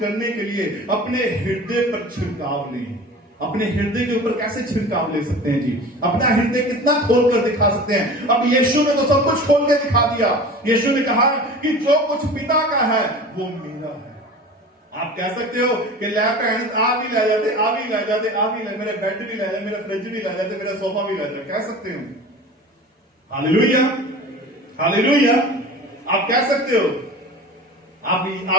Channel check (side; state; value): both; normal; correlation 0.37